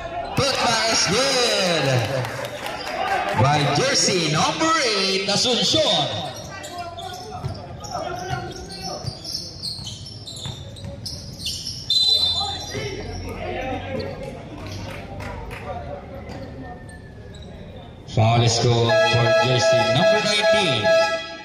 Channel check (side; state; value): both; identical; correlation 1.00